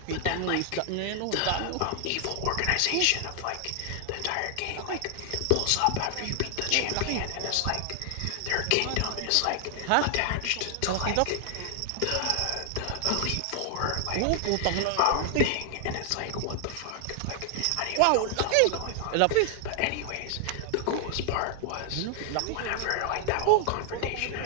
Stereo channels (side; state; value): both; different; correlation 0.00